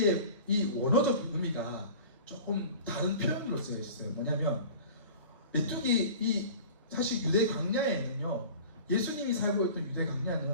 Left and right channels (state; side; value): inverted; both; correlation -0.40